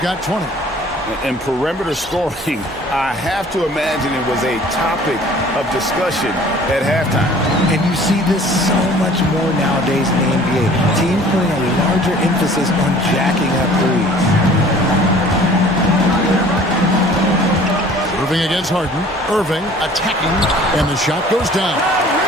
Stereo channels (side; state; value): both; normal; correlation 0.50